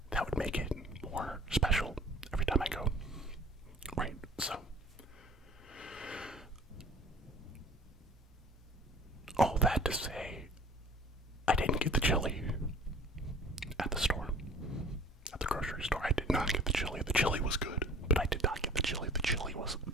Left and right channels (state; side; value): normal; both; correlation 0.47